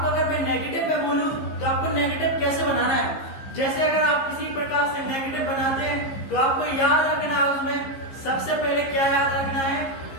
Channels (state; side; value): late; right; 15 ms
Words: अगर मैं नेगेटिव में बोलूं तो आपको नेगेटिव कैसे बनाना है। जैसे अगर आप किसी प्रकार से नेगेटिव बनाते हैं तो आपको याद रखना है, उसमें सबसे पहले क्या याद रखना है,